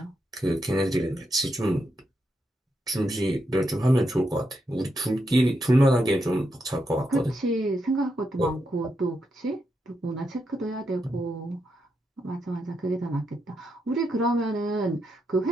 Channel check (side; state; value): both; normal; correlation 0.83